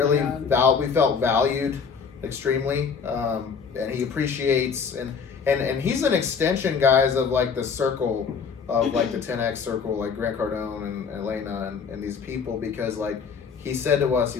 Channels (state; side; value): quieter; right; 6.0 dB